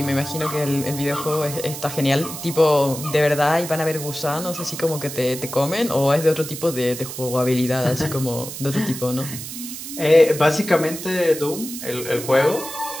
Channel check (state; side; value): noise; right; hiss, 9 dB below the sound